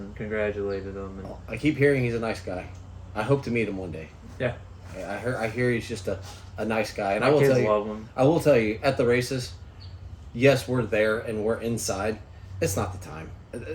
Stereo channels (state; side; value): identical; both; correlation 1.00